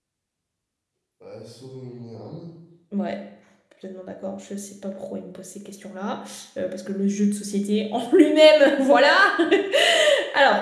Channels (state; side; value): identical; both; correlation 1.00